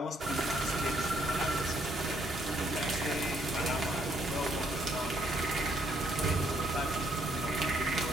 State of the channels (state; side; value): normal; both; correlation 0.70